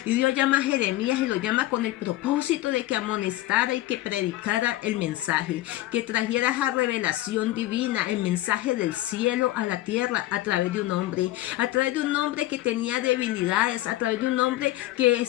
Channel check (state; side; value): quieter; right; 16.1 dB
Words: Y Dios llama a Jeremías y lo llama con el propósito de que amonestara y que predicara el mensaje, que trajera esa revelación divina, el mensaje del cielo a la tierra a través de un hombre que tenía debilidades, a través de un hombre que